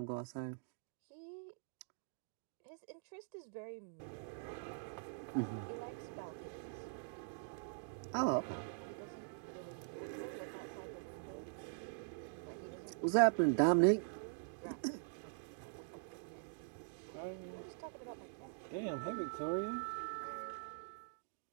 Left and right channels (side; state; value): left; silent; digital silence